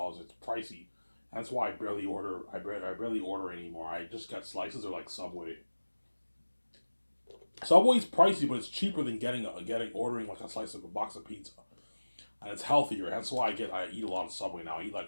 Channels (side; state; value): both; inverted; correlation -1.00